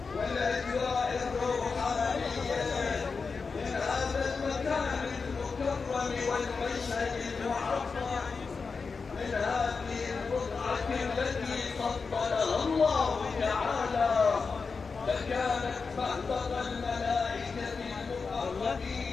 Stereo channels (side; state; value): right; quieter; 4.8 dB